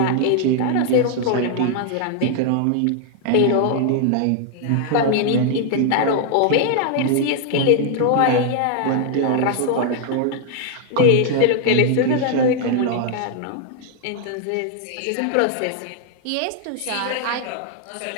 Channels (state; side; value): different; both; correlation 0.00